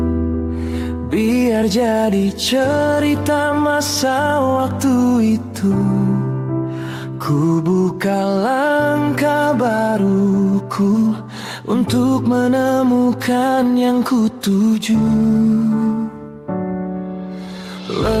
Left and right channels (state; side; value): identical; both; correlation 1.00